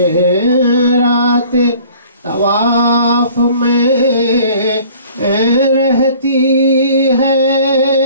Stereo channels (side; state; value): both; inverted; correlation -0.51